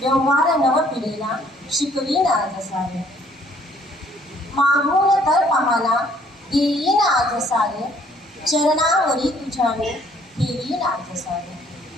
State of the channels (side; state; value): both; normal; correlation 0.61